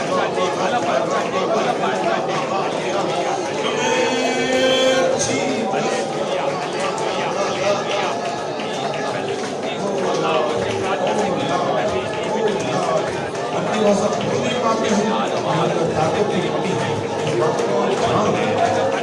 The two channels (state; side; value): identical; both; correlation 1.00